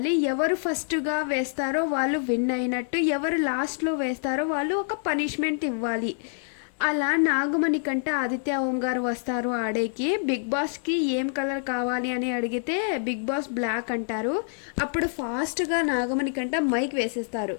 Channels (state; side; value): silent; right; digital silence